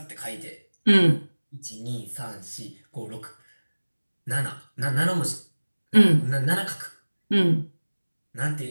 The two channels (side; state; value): both; inverted; correlation -1.00